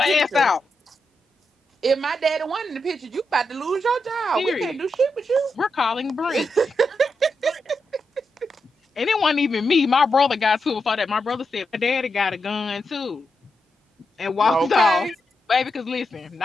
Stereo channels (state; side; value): normal; both; correlation 0.85